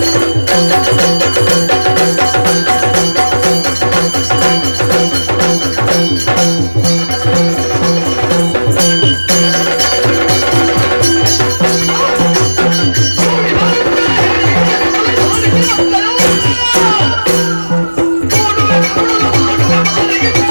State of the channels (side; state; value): both; inverted; correlation -1.00